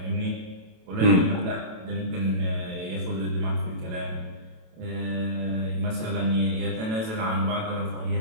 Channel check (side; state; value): left; late; 27 ms